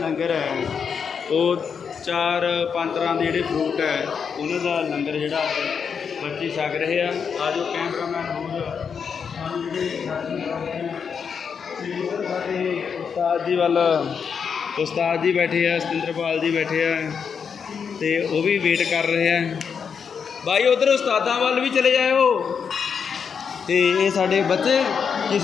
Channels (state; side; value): quieter; right; 6.5 dB